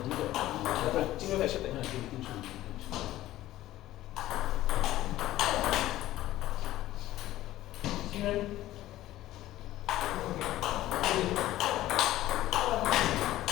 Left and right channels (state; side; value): quieter; right; 15.1 dB